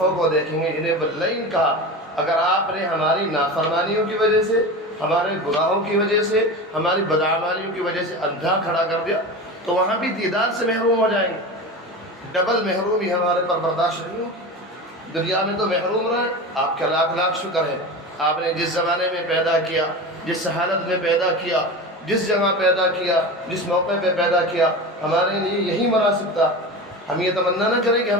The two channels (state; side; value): normal; both; correlation 0.28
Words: کو دیکھیں گے جنہیں واللیل کہا۔ اگر آپ نے ہماری نافرمانیوں کی وجہ سے، ہمارے گناہوں کی وجہ سے، ہماری بدعمالیوں کی وجہ سے اندھا کھڑا کر دیا تو وہاں بھی دیدار سے محروم ہو جائیں گے۔ ڈبل محرومی ہمارے پر برداشت نہیں ہوگی۔ دنیا میں تو محروم رہے، آپ کا لاکھ لاکھ شکر ہے، آپ نے جس زمانے میں پیدا کیا، جس حالت میں پیدا کیا، جس جگہ پیدا کیا، جس موقع پہ پیدا کیا، ہمارے لیے یہی مناسب تھا۔ ہم یہ تمنا نہ کریں کہ